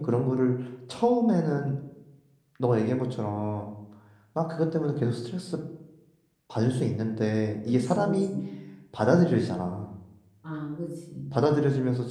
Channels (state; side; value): identical; both; correlation 1.00